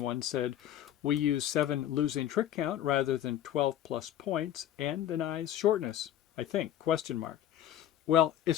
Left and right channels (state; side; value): quieter; right; 11.4 dB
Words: said we use 7 losing trick count rather than 12 plus points and denies shortness, I think, question mark. Well,